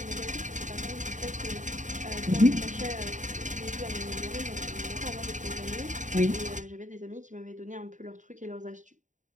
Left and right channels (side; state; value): left; late; 0.36 ms